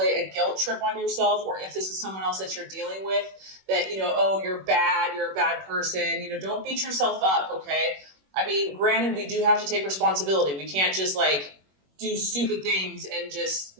a guilt trip on yourself, or if this is someone else that you're dealing with, that, you know, oh, you're a bad person. You know, don't beat yourself up, okay? I mean, granted, we do have to take responsibility. We can't just like do stupid things and just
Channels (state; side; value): late; left; 21 ms